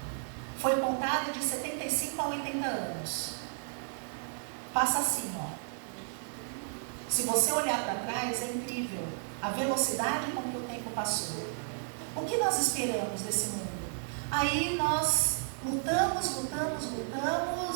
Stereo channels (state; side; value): silent; left; digital silence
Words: Foi contada de 75 a 80 anos. Passa assim, ó. Se você olhar para trás, é incrível a velocidade com que o tempo passou. O que nós esperamos desse mundo? Aí nós lutamos